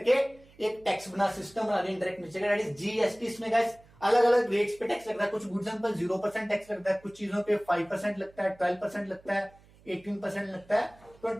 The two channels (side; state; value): right; noise; hum, 27 dB below the sound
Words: एक टैक्स बना, सिस्टम बना दिया इंडायरेक्ट नेचर का, दैट इज जीएसटी। इसमें गाइस अलग अलग रेट्स पे टैक्स लगता है। कुछ गुड्स पर 0% टैक्स लगता है, कुछ चीजों पे 5% लगता है, 12% लगता है, 18% लगता है,